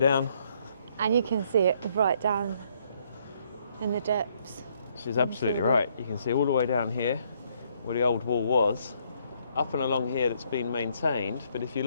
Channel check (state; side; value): inverted; both; correlation -0.69